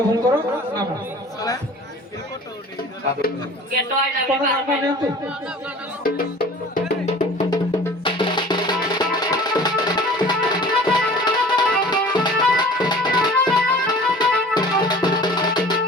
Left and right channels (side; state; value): both; normal; correlation 0.44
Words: ନାମ। ଆପଣ ନାମ ନିଅନ୍ତୁ।